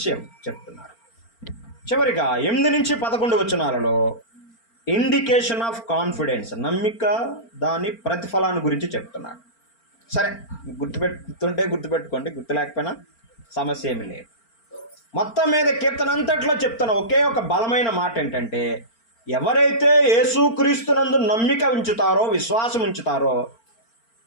చెప్తున్నారు. చివరిగా 8-11 వచనాలలో ఇండికేషన్ ఆఫ్ కాన్ఫిడెన్స్, నమ్మిక దాని ప్రతిఫలాన్ని గురించి చెప్తున్నాడు. సరే, గుర్తుపెట్టుకోండి, గుర్తు లేకపోయినా సమస్య ఏమీ లేదు. మొత్తం మీద కీర్తన అంతట్లో చెప్తున్న ఒకే ఒక బలమైన మాట ఏంటంటే, ఎవరైతే యేసుక్రీస్తునందు నమ్మిక ఉంచుతారో, విశ్వాసం ఉంచుతారో,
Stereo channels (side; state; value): right; late; 4.4 ms